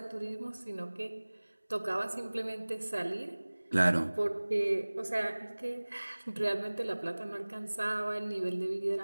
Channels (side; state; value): both; inverted; correlation -1.00